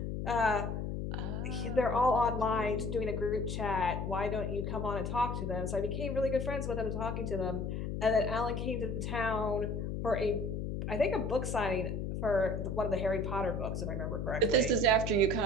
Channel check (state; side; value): noise; left; hum, 3 dB below the sound